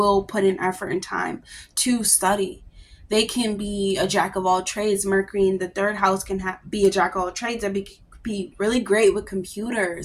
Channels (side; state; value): both; identical; correlation 1.00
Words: put in effort and time to study. They can be a jack of all trades. Mercury in the third house can be a jack of all trades and be really great with